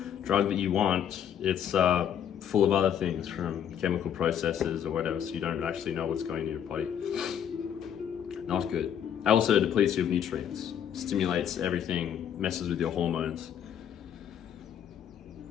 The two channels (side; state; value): right; quieter; 9.1 dB